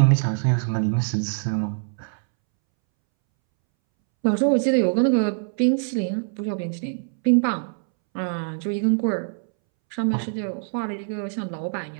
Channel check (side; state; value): left; silent; 63 dB below the other